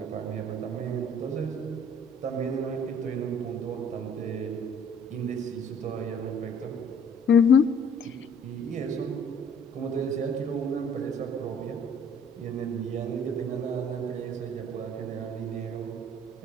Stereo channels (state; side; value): normal; both; correlation 0.56